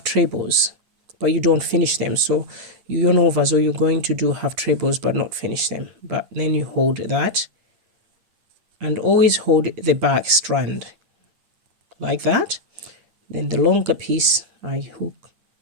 trebles, but you don't finish them. So you yarn over, so you're going to do half trebles but not finish them. But then you hold that and always hold the back strand like that. Then the longer piece I hook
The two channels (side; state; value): left; late; 9.5 ms